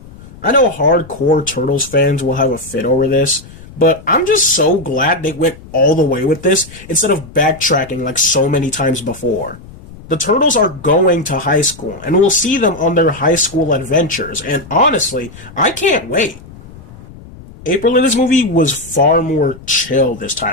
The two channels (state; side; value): noise; left; rumble, 19 dB below the sound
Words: I know hardcore Turtles fans will have a fit over this, but I'm just so glad they went all the way with this instead of backtracking like so many times before. The Turtles are going to high school, and we'll see them on their high school adventures, and honestly, I can't wait. April in this movie was far more chill this